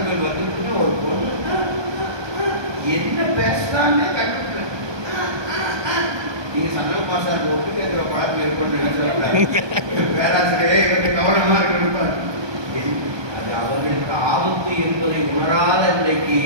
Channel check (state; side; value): late; left; 1.2 ms